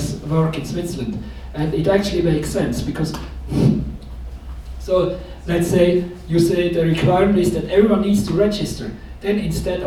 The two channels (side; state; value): both; identical; correlation 1.00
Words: work in Switzerland. And it actually makes sense because, so let's say you say the requirement is that everyone needs to register. Then instead